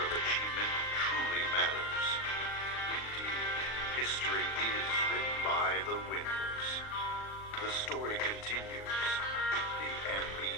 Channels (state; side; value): late; right; 38 ms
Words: achievement truly matters. Indeed, history is written by the winners. The story continues. The